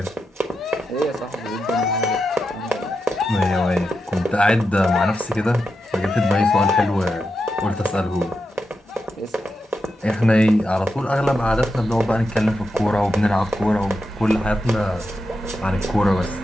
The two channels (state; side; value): normal; both; correlation 0.88